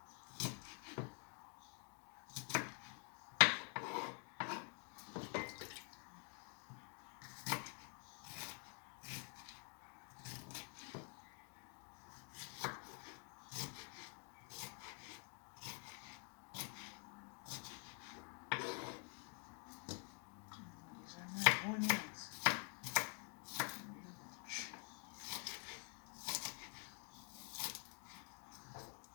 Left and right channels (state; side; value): quieter; right; 39.5 dB